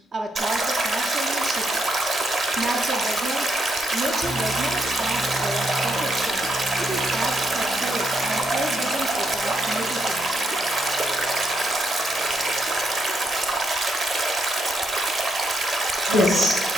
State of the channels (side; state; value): both; normal; correlation 0.78